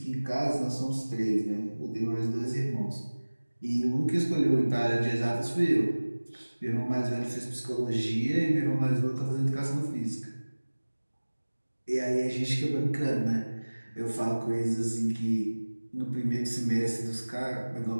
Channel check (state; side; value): inverted; both; correlation -1.00